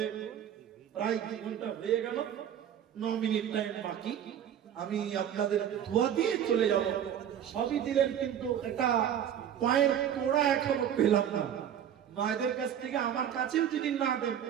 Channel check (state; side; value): quieter; left; 9.7 dB